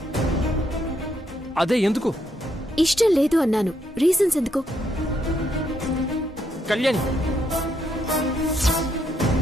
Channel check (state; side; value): normal; both; correlation 0.75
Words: అదే ఎందుకు? ఇష్టం లేదు అన్నాను. రీజన్స్ ఎందుకు? Kalyani,